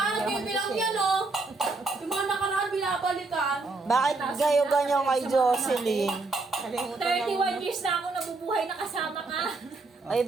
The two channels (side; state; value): left; quieter; 3.6 dB